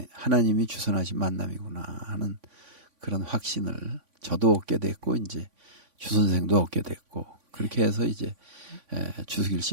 주선하신 만남이구나 하는 그런 확신을 저도 얻게 됐고 이제 주 선생도 얻게 됐고 그렇게 해서 이제 주수길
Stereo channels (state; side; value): late; left; 3.5 ms